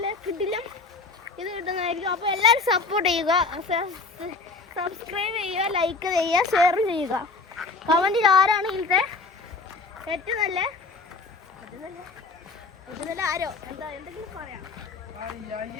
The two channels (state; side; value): quieter; right; 3.9 dB